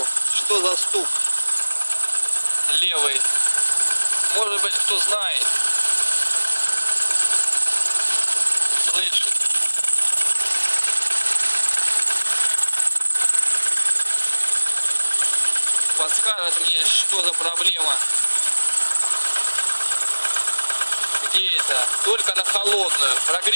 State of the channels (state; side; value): inverted; both; correlation -1.00